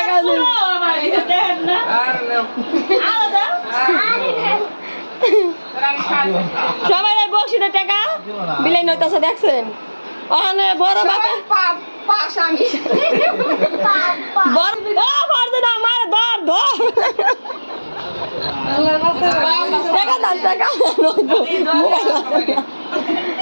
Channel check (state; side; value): inverted; both; correlation -1.00